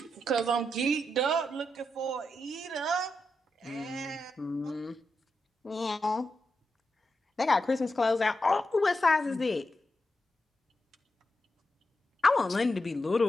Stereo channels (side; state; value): both; normal; correlation 0.86